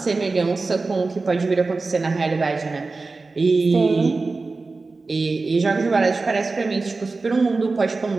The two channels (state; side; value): quieter; left; 3.8 dB